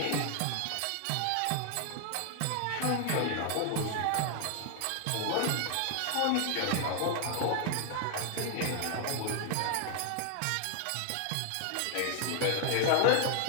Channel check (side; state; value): both; different; correlation 0.00